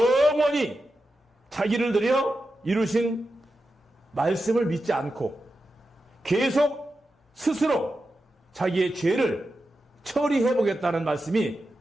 자기를 들여 이루신 말씀을 믿지 않고 계속 스스로 자기의 죄를 처리해보겠다는 말씀이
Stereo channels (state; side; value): normal; both; correlation 0.90